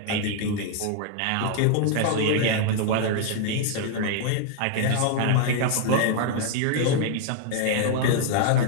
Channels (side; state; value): both; different; correlation 0.00